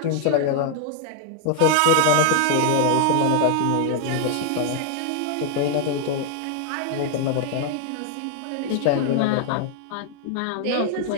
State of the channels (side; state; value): both; different; correlation 0.00